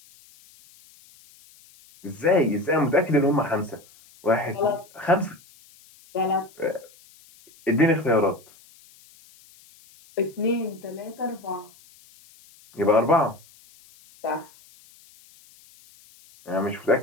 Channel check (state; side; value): noise; left; hiss, 26 dB below the sound